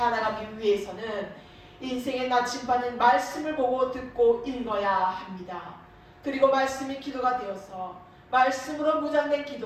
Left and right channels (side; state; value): both; identical; correlation 1.00